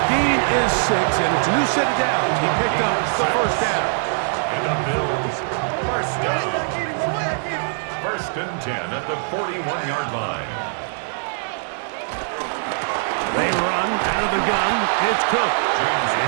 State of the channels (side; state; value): left; silent; digital silence